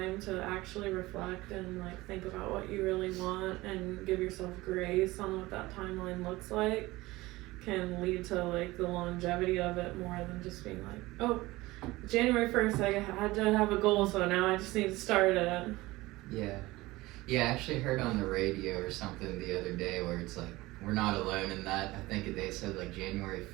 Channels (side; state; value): left; quieter; 19.7 dB